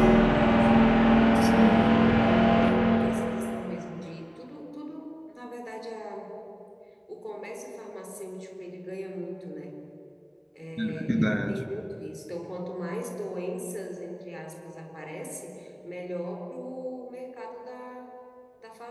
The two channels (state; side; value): identical; both; correlation 1.00